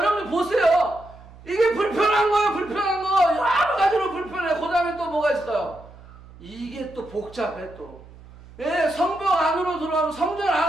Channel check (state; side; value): noise; right; hum, 21 dB below the sound